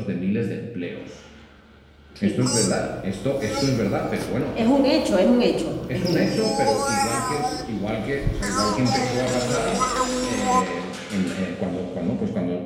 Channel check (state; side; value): identical; both; correlation 1.00